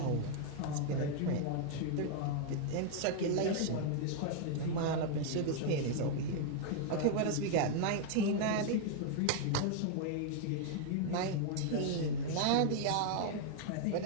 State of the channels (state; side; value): different; both; correlation 0.00